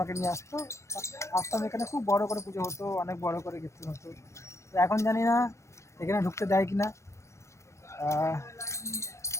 নিয়ে আসতো, আসতাম, এখানে খুব বড় করে পুজো হতো, অনেক বড় করে কীর্তন হতো। তো এখন জানি না এখানে ঢুকতে দেয় কিনা।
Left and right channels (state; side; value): late; right; 0.14 ms